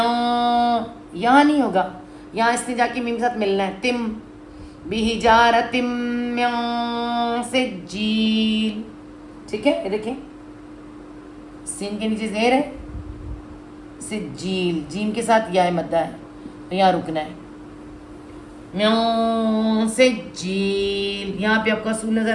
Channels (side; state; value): both; identical; correlation 1.00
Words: یہاں نہیں ہوگا، یہاں اس نے جا کے میم کے ساتھ ملنا ہے. تم بحجارتم من سجیل، ٹھیک ہے. یہ دیکھیں سین کے نیچے زیر ہے، سجیل، جیم کے ساتھ یا مدہ ہے، تو یہاں رکنا ہے. من سجیل، یہاں پہ آپ کو اصول